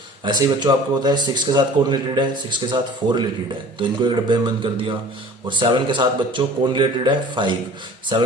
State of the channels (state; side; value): normal; both; correlation 0.46